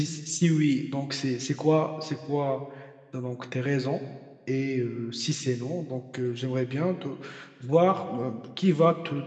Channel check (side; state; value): both; identical; correlation 1.00